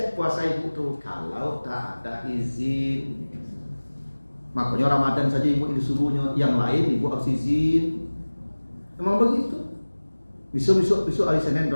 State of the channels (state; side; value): inverted; both; correlation -1.00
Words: puasa ibu tuh kalau tak ada izin. Makanya Ramadan saja ibu disuruhnya, yang lain ibu harus izin. Memang begitu. Besok hari Senin